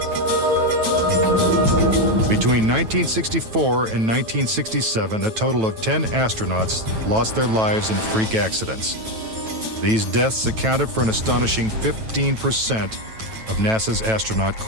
Between 1964 and 1967, a total of 10 astronauts lost their lives in freak accidents. These deaths accounted for an astonishing 15% of NASA's astronaut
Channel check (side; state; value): left; late; 9.1 ms